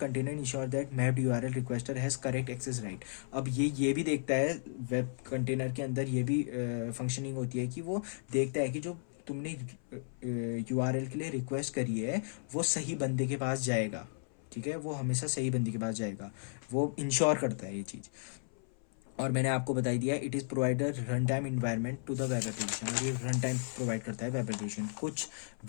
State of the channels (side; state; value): right; silent; 55 dB below the other